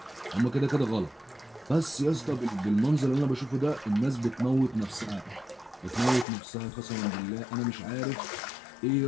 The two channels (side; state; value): right; drops out; at 6.2 s